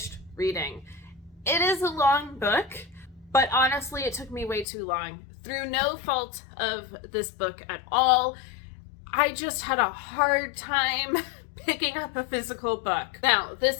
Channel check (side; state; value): right; drops out; at 4.7 s